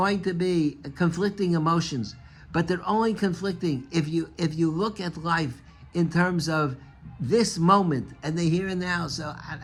to be conflicting emotions, but they're only conflicting if you look at life in terms of this moment and the here and now. So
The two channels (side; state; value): both; identical; correlation 1.00